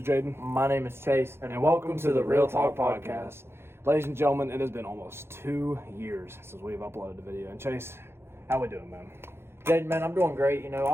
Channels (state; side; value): late; left; 0.12 ms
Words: Jaden. My name is Chase, And welcome to the Real Talk Podcast. Ladies and gentlemen, it has been almost 2 years since we've uploaded a video. And Chase, how we doing, man? Jaden, man, I'm doing great. You know,